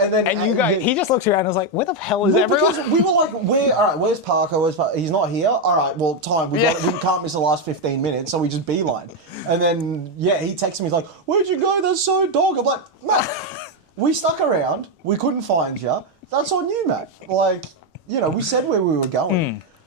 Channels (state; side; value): late; left; 3.1 ms